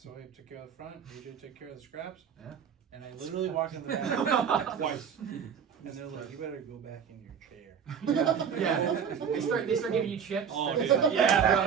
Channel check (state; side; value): quieter; left; 7.3 dB